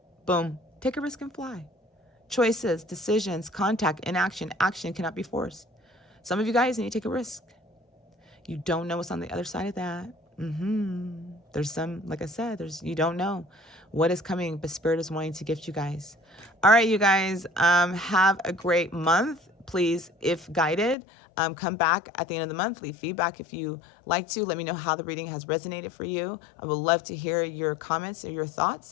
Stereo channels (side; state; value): right; drops out; at 21.0 s